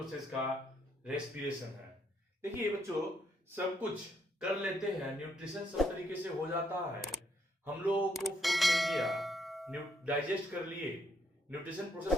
का रेस्पिरेशन है। देखिए बच्चों, सब कुछ कर लेते हैं, न्यूट्रिशन सब तरीके से हो जाता है, हम लोगों को फूड मिल गया, डाइजेस्ट कर लिए, न्यूट्रिशन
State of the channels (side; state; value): both; normal; correlation 0.73